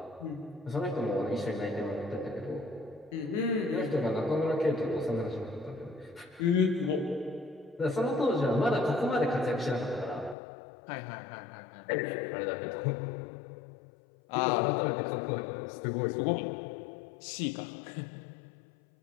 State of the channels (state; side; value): drops out; right; at 10.4 s